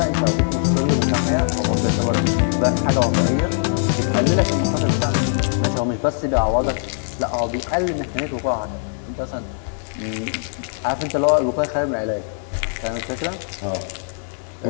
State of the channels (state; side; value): silent; right; 59 dB below the other